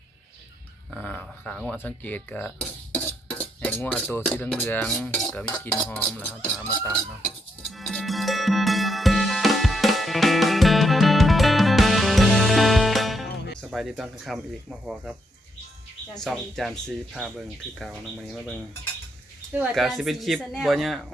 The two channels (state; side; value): normal; both; correlation 0.78